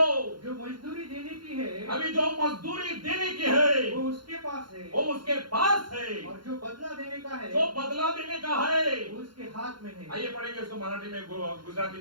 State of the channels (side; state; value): left; late; 0.72 ms